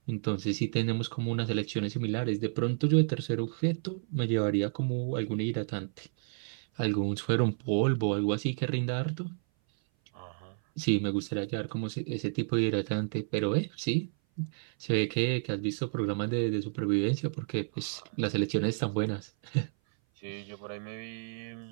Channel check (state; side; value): silent; left; 56 dB below the other